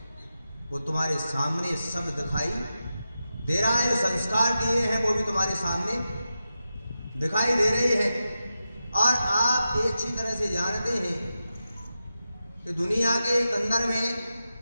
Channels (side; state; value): both; inverted; correlation -0.90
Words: वो तुम्हारे सामने सब दिखाई दे रहा है। जो संस्कार दिए हैं वो भी तुम्हारे सामने दिखाई दे रहे हैं। और आप ये अच्छी तरह से जानते हैं कि दुनिया के अंदर में